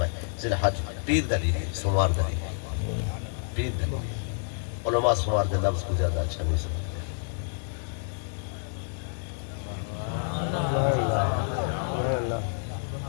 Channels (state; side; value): silent; right; digital silence